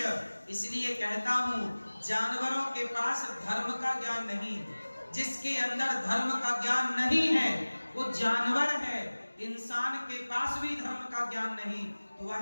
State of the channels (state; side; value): inverted; both; correlation -1.00